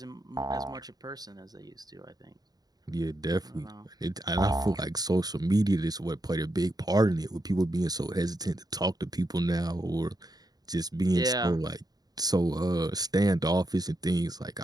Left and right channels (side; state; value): left; late; 0.19 ms